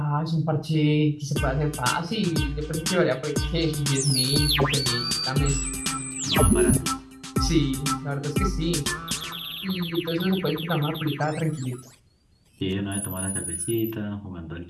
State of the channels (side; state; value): both; identical; correlation 1.00